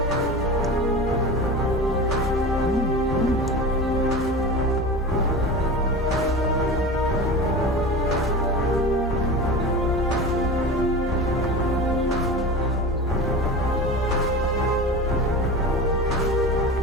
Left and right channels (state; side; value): normal; both; correlation 0.31